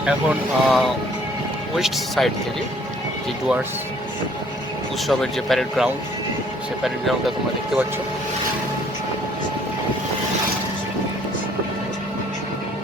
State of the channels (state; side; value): normal; both; correlation 0.60